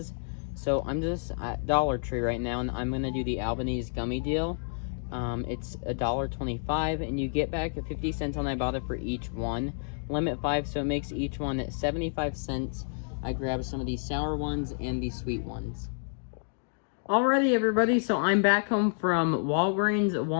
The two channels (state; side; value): silent; right; digital silence